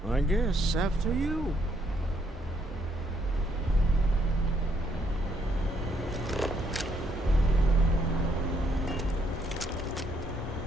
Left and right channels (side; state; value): both; normal; correlation 0.72